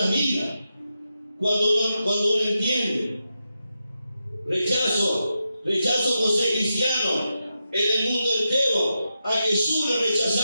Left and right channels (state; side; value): inverted; both; correlation -0.88